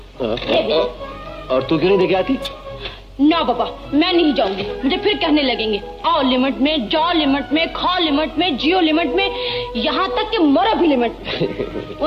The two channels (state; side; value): identical; both; correlation 1.00